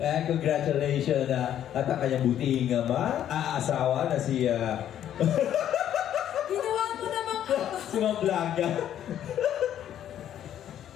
Congratulations at ang kanyang buting aasawa na si Ginawa mo namang si Ma'am Blanca.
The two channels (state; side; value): quieter; right; 10.7 dB